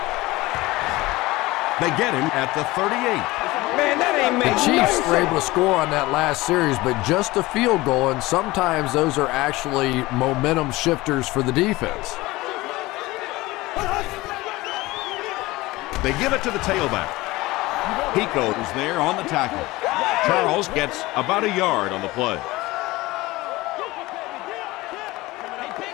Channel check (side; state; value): right; quieter; 20.0 dB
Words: They get him at the 38. Man, that ain't The Chiefs were able to score on that last series, but just a field goal, and sometimes those are actually momentum shifters for the defense. They give it to the tailback. Pico is there on the tackle. Charles gets about a yard on the play.